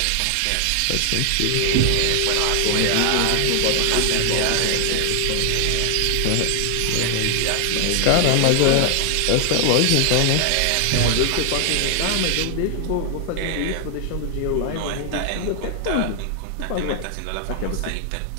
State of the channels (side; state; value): both; different; correlation 0.00